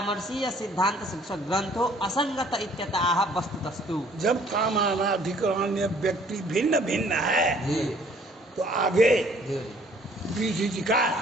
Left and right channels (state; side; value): normal; both; correlation 0.58